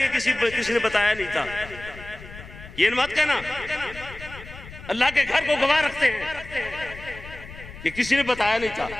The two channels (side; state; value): left; noise; rumble, 15 dB below the sound